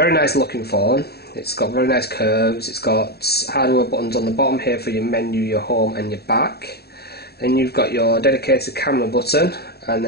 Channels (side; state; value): right; late; 0.47 ms